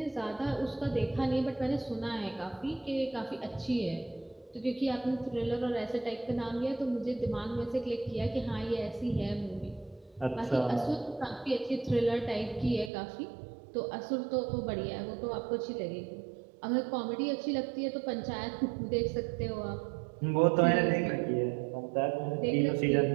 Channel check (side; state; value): left; drops out; at 12.9 s